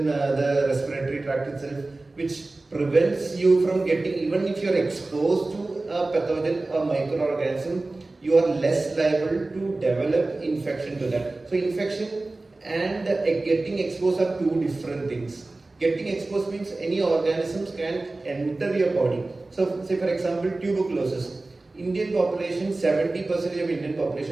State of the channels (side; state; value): left; quieter; 3.1 dB